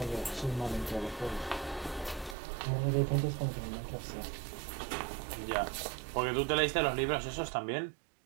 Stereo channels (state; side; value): drops out; left; at 2.4 s